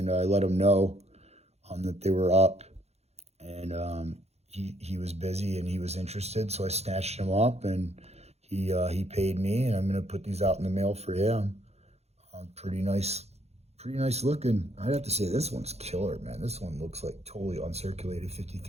I let him know that they were up, and he was busy and he was interested, so I snatched him up, and he paid me, and I'm gonna put these out in the mail for him. Pretty nice looking. I'd have to say this one's killer, man. This one looks like totally uncirculated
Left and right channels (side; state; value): left; late; 0.31 ms